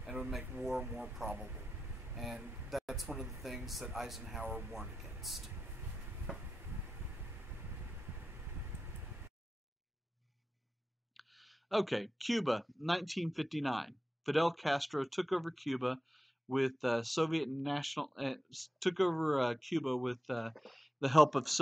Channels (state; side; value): normal; both; correlation 0.92